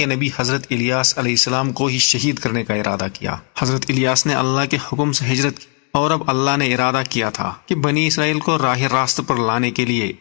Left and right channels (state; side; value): quieter; right; 38.5 dB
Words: نبی حضرت الیاس علیہ السلام کو ہی شہید کرنے کا ارادہ کیا۔ حضرت الیاس نے اللہ کے حکم سے ہجرت کی، اور اب اللہ نے ارادہ کیا تھا کہ بنی اسرائیل کو راہ راست پر لانے کے لیے